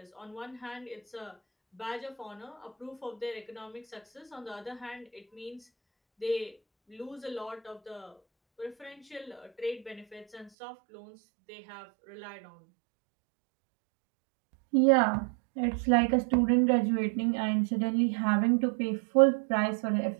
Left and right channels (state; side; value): drops out; left; at 10.5 s